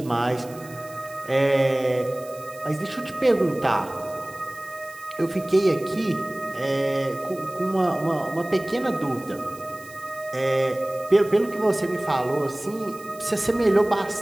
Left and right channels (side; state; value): right; noise; hiss, 21 dB below the sound